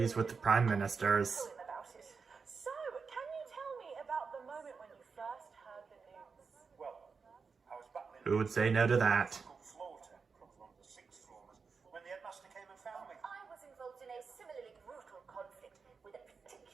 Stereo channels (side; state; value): left; quieter; 5.2 dB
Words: with the Prime Ministers. overjoyed about it. So, can you tell me about the moment when you first heard the news? Well, I was battling Who would say no to that? floor temper on the 6th floor when the headmaster came and found me. I was involved in a similarly brutal conflict with a